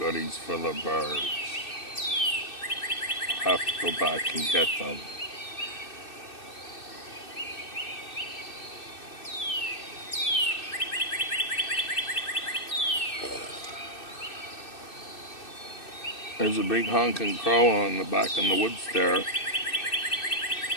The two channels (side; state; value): right; late; 2.6 ms